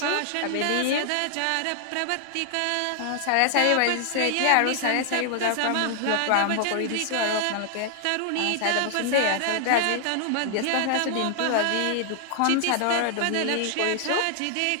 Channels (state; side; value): different; both; correlation 0.00